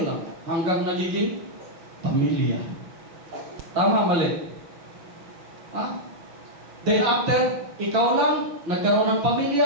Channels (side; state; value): left; late; 6.5 ms